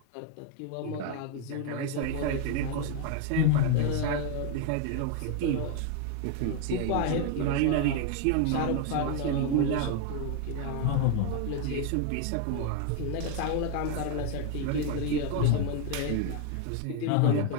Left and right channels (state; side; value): different; both; correlation 0.01